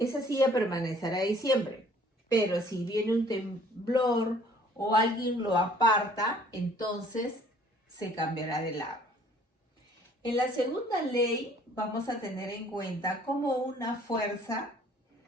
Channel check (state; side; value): normal; both; correlation 0.57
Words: silla permanecerá ahí siempre. Pero si viene un temblor o alguien lo aparta, entonces se cambiará de lado. En la segunda ley vamos a tener en cuenta cómo una fuerza